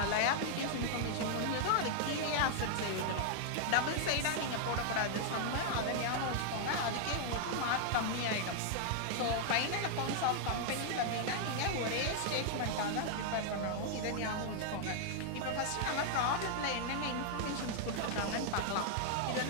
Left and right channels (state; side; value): different; both; correlation 0.00